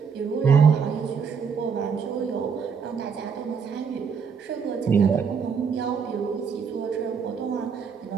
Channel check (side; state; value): left; quieter; 6.1 dB